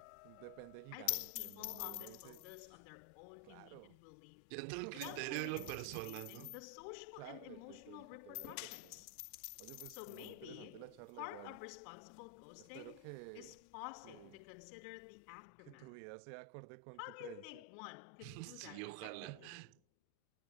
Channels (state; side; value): different; both; correlation 0.00